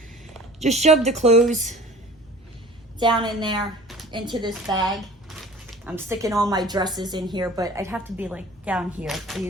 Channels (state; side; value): normal; both; correlation 0.45